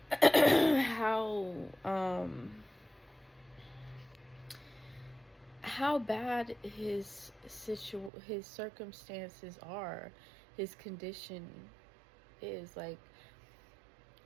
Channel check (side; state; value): left; drops out; at 8.1 s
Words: bad his circumstances are, his condition is. Like,